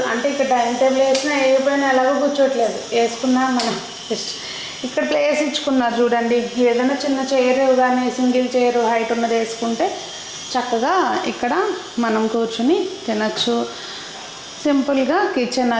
అంటే ఇక్కడ డైనింగ్ టేబుల్ వేసినా వేయకపోయినా ఎలాగో కూర్చోట్లేదు వేసుకున్నా మనం ఇక్కడ ప్లేస్ ఇచ్చుకున్నారు చూడండి ఏదైనా చిన్న చైర్ కానీ సింగిల్ చైర్ హైట్ ఉన్నది వేసుకుంటే చక్కగా ఇక్కడ మనం కూర్చుని తినచ్చు సింపుల్గా కిచెన్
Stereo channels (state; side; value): identical; both; correlation 1.00